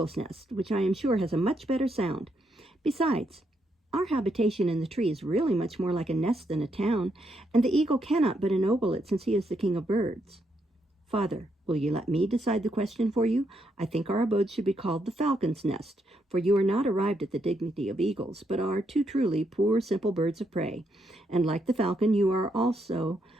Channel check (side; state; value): both; normal; correlation 0.78